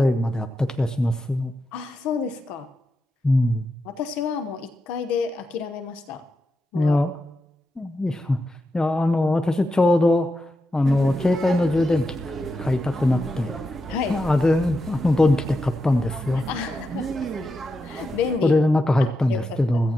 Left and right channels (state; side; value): normal; both; correlation 0.87